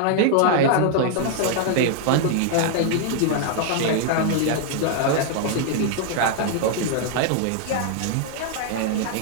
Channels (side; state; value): both; different; correlation 0.00